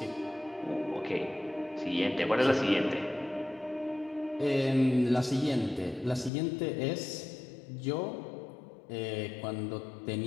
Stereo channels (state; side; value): drops out; right; at 6.3 s